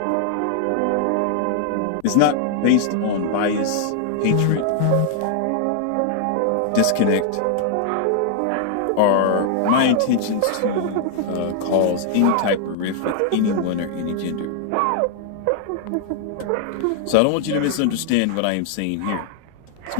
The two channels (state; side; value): different; both; correlation 0.00